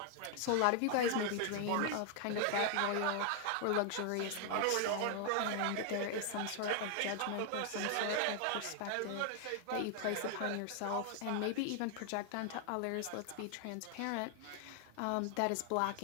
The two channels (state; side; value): different; both; correlation 0.00